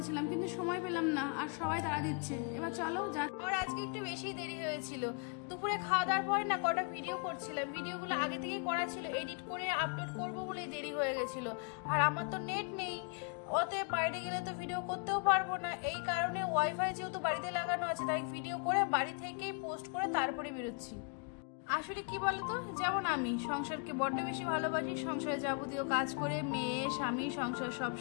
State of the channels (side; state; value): right; quieter; 36.1 dB